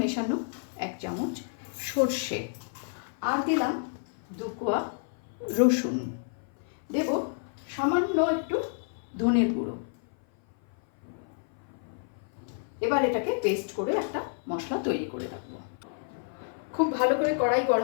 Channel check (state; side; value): silent; right; 56 dB below the other